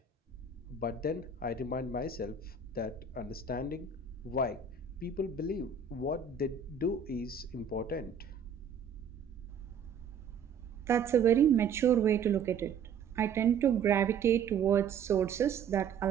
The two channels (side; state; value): left; quieter; 6.2 dB